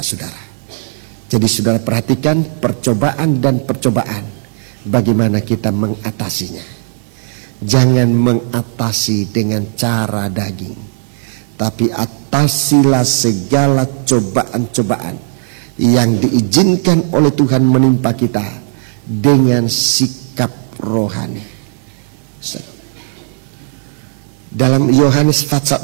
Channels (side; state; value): left; silent; digital silence